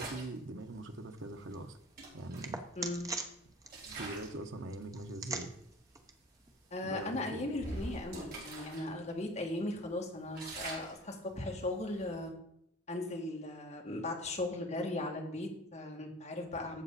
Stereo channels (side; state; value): both; normal; correlation 0.43